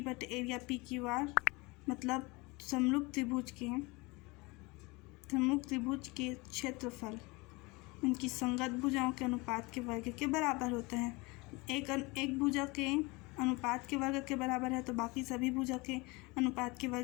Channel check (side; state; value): right; quieter; 25.1 dB